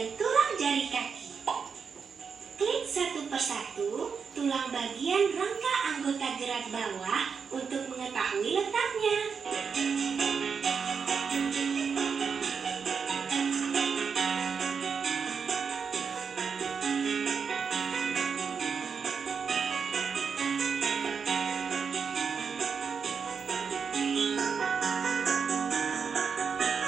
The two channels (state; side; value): quieter; left; 6.0 dB